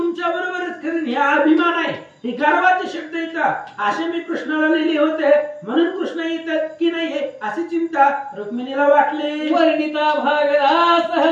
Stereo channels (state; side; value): identical; both; correlation 1.00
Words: बरोबरच करेन. हे अभिमान आहे, हे गर्वाचे शब्द येतात असे मी कृष्णाला लिहिले होते. म्हणून कृष्ण येतात की नाही अशी चिंता रुक्मिणीला वाटली. वर्णिता भागला